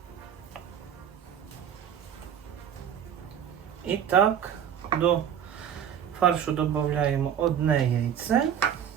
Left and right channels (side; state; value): left; quieter; 9.1 dB